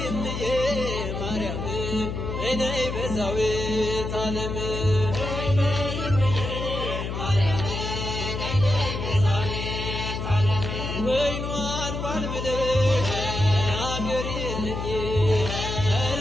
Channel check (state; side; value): noise; left; hum, 4 dB below the sound